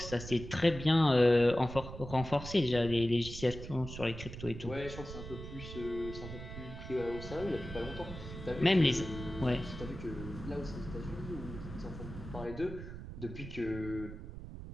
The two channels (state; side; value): noise; right; rumble, 10 dB below the sound